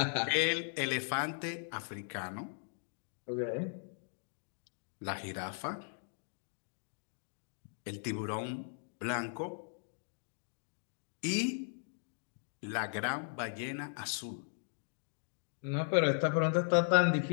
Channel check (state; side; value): silent; right; digital silence